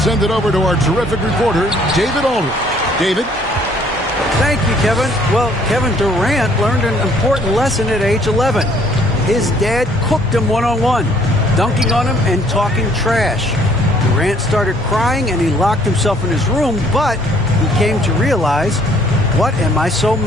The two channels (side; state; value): both; normal; correlation 0.61